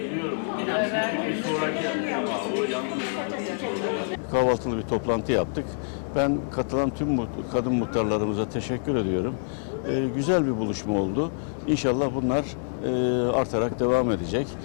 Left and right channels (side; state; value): right; silent; 61 dB below the other